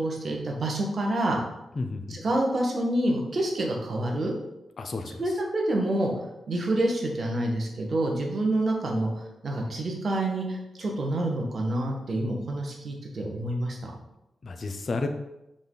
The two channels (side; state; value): both; normal; correlation 0.86